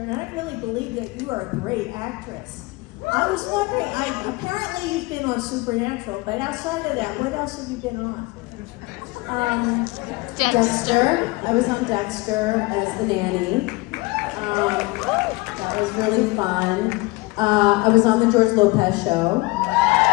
I really believe that you are a great actress. I was wondering, apparently you've been on Supernatural, but outside of that, what else have you been on? Dexter. I was on Dexter as the nanny. That was really fun. I was on the George Lopez show.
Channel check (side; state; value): right; quieter; 23.5 dB